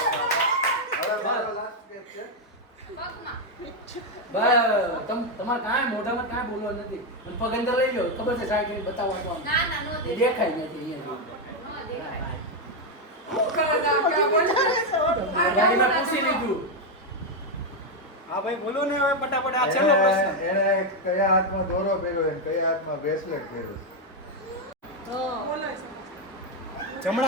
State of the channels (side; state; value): both; normal; correlation 0.04